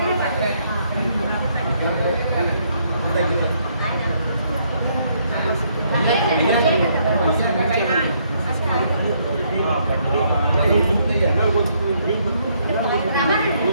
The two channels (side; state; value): both; inverted; correlation -0.71